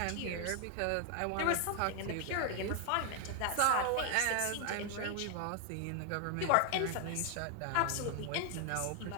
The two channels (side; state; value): both; different; correlation 0.00